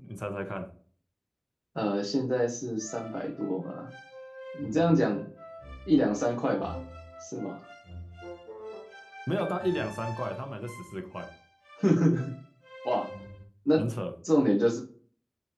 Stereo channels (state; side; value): identical; both; correlation 1.00